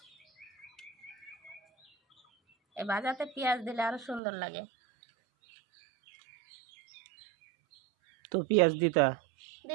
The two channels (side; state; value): left; drops out; at 4.2 s